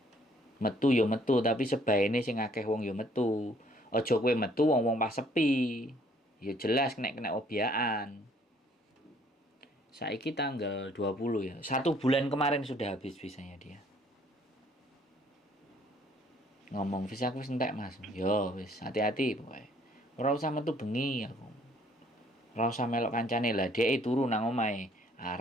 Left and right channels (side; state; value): both; normal; correlation 0.62